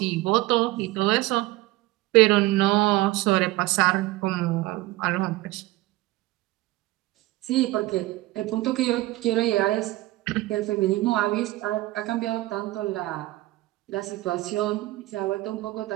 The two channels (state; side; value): quieter; left; 18.5 dB